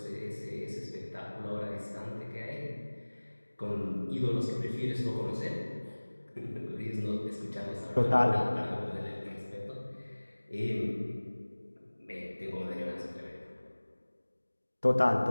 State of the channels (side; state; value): both; inverted; correlation -1.00